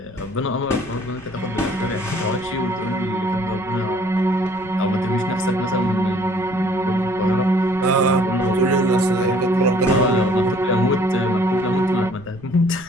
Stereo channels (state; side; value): noise; right; rumble, 23 dB below the sound